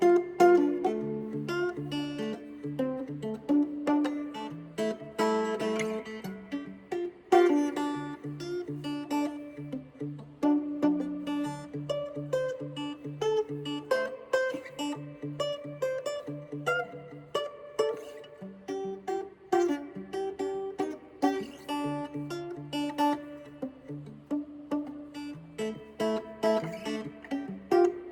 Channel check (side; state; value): both; identical; correlation 1.00